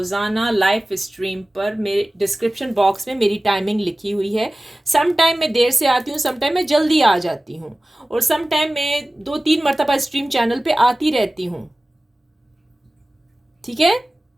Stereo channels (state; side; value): normal; both; correlation 0.97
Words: लाइव स्ट्रीम पर, मेरे डिस्क्रिप्शन बॉक्स में मेरी टाइमिंग लिखी हुई है। सम टाइम मैं देर से आती हूँ, सम टाइम मैं जल्दी आ जाती हूँ, और सम टाइम मैं 2-3 मरतबा स्ट्रीम चैनल पे आती रहती हूँ। ठीक है,